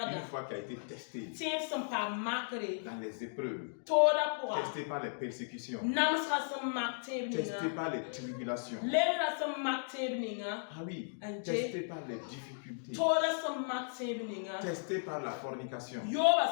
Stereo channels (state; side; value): silent; right; digital silence